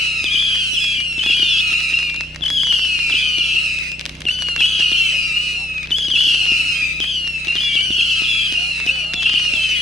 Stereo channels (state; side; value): normal; both; correlation 0.69